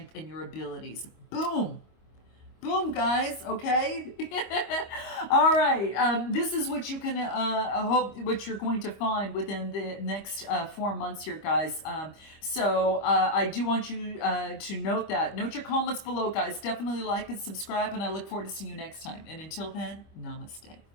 and your abilities. Boom. Boom, guys. Okay. All right. This is what you can hope, what you're going to find within the next 4 months here, guys. So I do want you to note your comments below, guys. Definitely like and subscribe, and I look forward to seeing you next time. And until then, namaste.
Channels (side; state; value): right; late; 25 ms